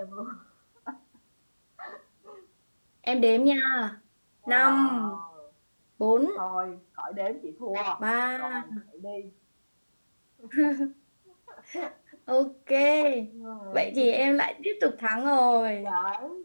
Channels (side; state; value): both; inverted; correlation -1.00